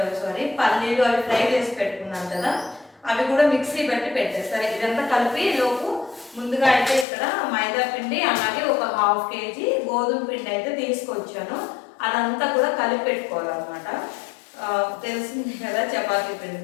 పల్లీలు అవి ఫ్రై చేసి పెట్టుకున్నాను కదా, అవి కూడా మిక్సీ పెట్టి పెట్టేస్తారు. ఇదంతా కలిపి లోపు ముందుగా అయితే ఇక్కడ మైదా పిండి అలాగే ఒక 1/2 కేజీ గోధుమ పిండి అయితే తీసుకొచ్చాను. అదంతా కూడా కలిపి పెట్టుకోవాలన్నమాట. తెలిసింది కదా చపాతీ పిండి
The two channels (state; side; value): drops out; right; at 7.1 s